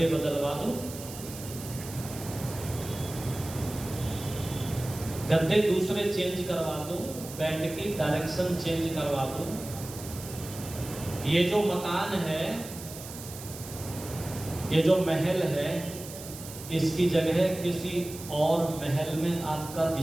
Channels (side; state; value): right; noise; hiss, 13 dB below the sound